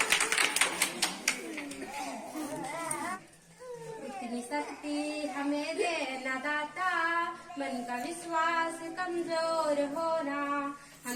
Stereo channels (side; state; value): both; identical; correlation 1.00